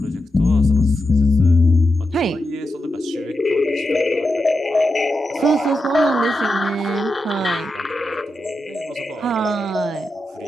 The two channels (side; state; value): both; normal; correlation 0.88